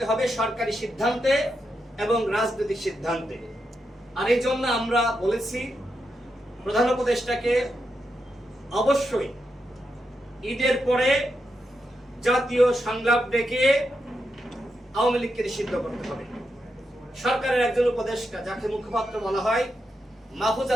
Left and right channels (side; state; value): both; normal; correlation 0.85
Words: হবে সরকারি সিদ্ধান্তে এবং রাজনৈতিক সিদ্ধান্তে। আর এই জন্য আমরা বলেছি প্রধান উপদেষ্টাকে অবশ্যই ঈদের পরে জাতীয় সংলাপ ডেকে আওয়ামী লীগকে নিষিদ্ধ করতে হবে। সরকারের একজন উপদেষ্টা, যাকে মুখপাত্র বলা হয়, মাহফুজ